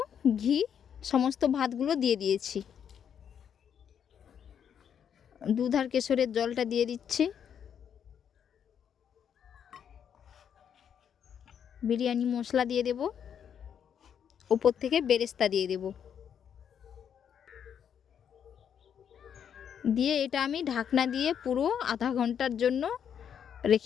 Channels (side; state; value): right; quieter; 8.3 dB